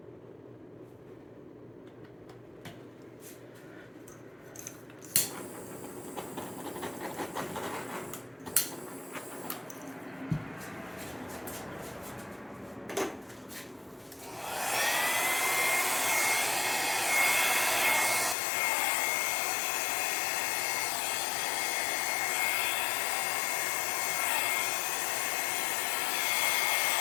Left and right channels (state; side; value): drops out; right; at 18.4 s